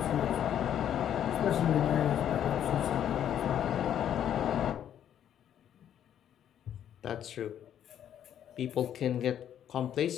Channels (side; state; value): right; quieter; 10.1 dB